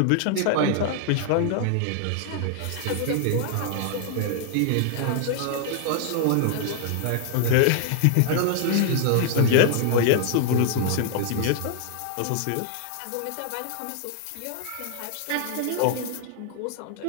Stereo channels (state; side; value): different; both; correlation 0.00